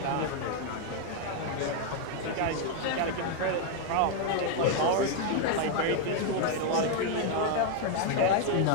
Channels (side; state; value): both; different; correlation 0.00